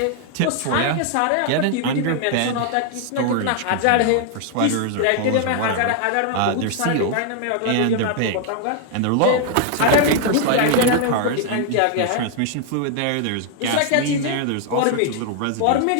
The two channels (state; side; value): different; both; correlation 0.00